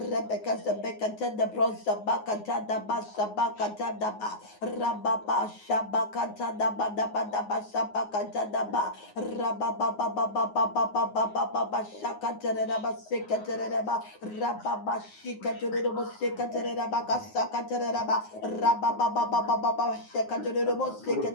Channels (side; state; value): right; late; 9.5 ms